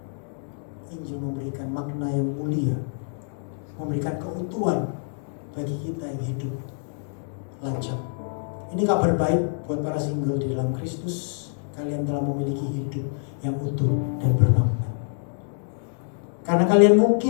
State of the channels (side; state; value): right; silent; digital silence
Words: Injil memberikan makna yang mulia, memberikan keutuhan bagi kita yang hidup lajang. Ini kabar baik buat para single di dalam Kristus. Kalian telah memiliki hidup yang utuh dan bermakna. Karena kalian